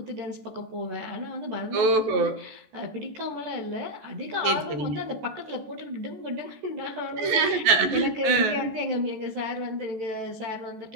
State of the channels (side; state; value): left; late; 14 ms